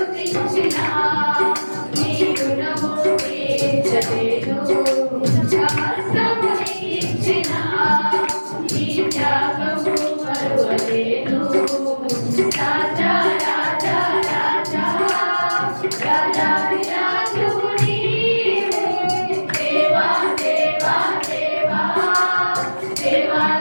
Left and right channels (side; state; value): both; inverted; correlation -1.00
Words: నీ రుణము తీర్చలేను, సమస్తము నీకిచ్చిన నీ త్యాగము మరువలేను. రాజా రాజా రాజా రాజాది రాజువు నీవే, దేవా దేవా దేవా